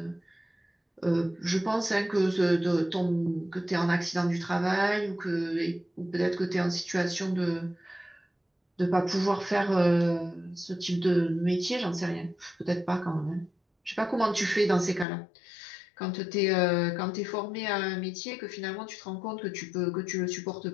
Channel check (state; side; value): drops out; right; at 15.1 s